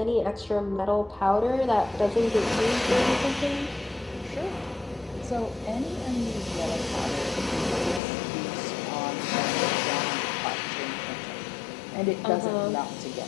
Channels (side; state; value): right; drops out; at 8.0 s